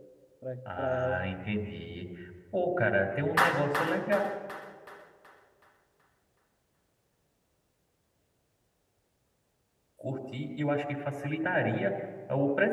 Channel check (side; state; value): both; identical; correlation 1.00